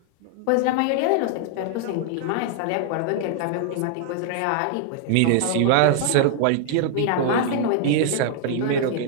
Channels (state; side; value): different; both; correlation 0.00